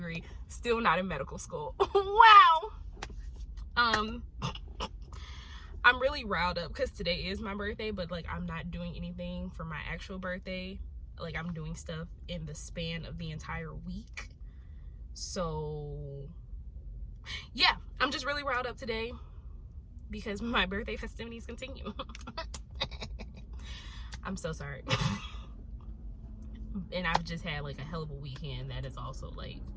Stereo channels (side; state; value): both; identical; correlation 1.00